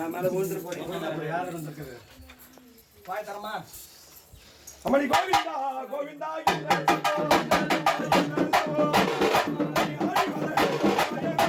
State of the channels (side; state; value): both; identical; correlation 1.00